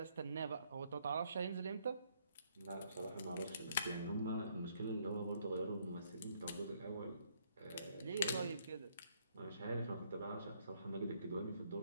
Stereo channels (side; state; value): both; inverted; correlation -0.68